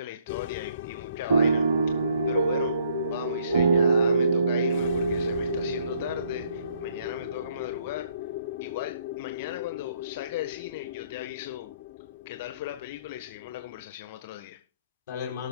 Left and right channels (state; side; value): inverted; both; correlation -0.67